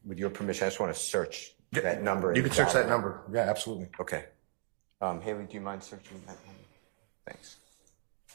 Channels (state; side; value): silent; left; 54 dB below the other